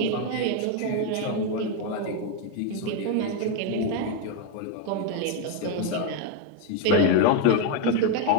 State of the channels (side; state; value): both; different; correlation 0.02